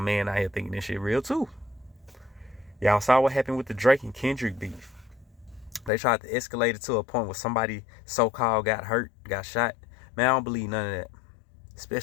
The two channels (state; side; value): drops out; right; at 5.9 s